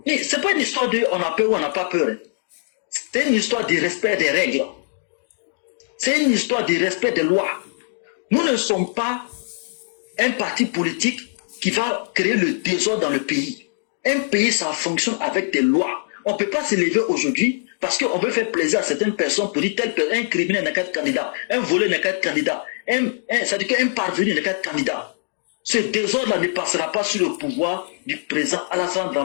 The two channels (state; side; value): silent; right; digital silence